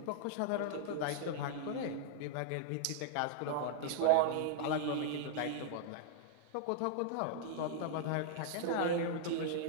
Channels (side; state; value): both; different; correlation -0.01